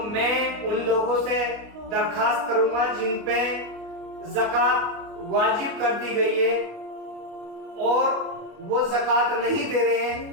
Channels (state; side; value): late; left; 28 ms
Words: میں ان لوگوں سے درخواست کروں گا جن پہ زکات واجب کر دی گئی ہے اور وہ زکات نہیں دے رہے